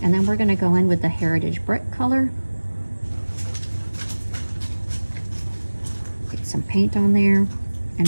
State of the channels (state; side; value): inverted; both; correlation -1.00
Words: and then we're going to go in with the Heritage Brick color. Get some paint on there, and